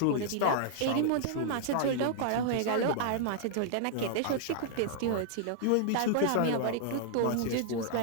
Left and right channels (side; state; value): both; different; correlation -0.01